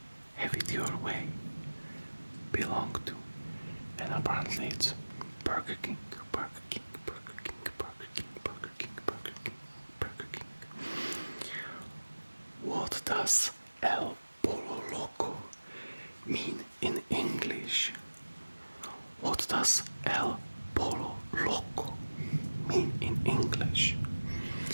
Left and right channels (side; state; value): both; inverted; correlation -1.00